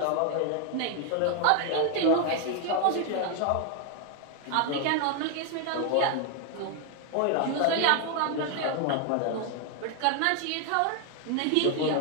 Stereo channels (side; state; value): both; different; correlation 0.00